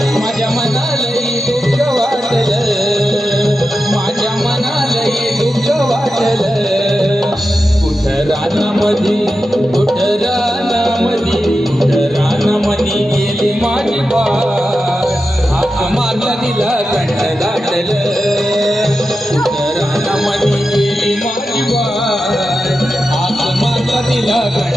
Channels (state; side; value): normal; both; correlation 0.90